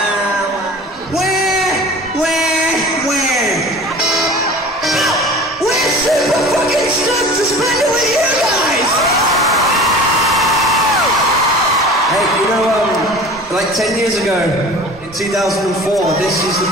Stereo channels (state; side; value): normal; both; correlation 0.40